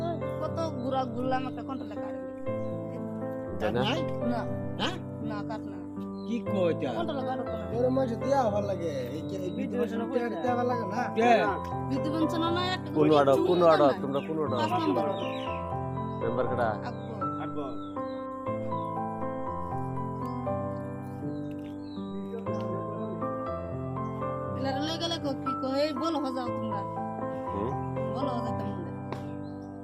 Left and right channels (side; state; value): both; identical; correlation 1.00